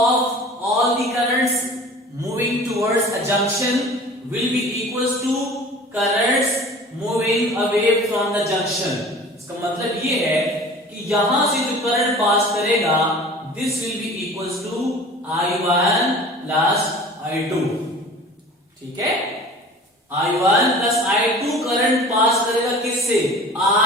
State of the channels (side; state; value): both; normal; correlation 0.42